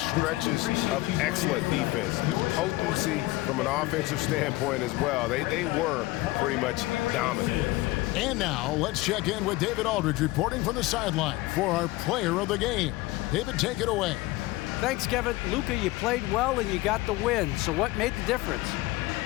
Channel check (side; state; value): right; quieter; 19.5 dB